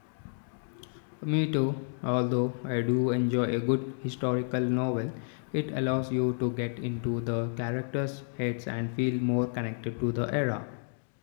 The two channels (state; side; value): silent; right; digital silence